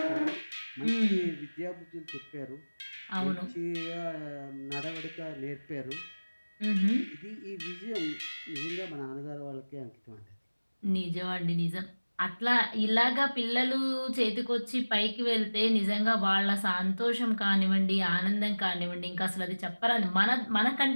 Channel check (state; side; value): inverted; both; correlation -1.00